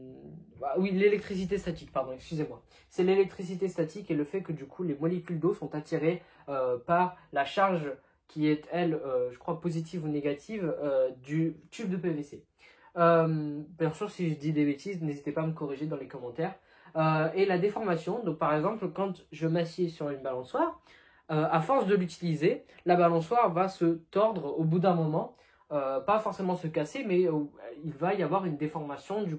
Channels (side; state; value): both; identical; correlation 1.00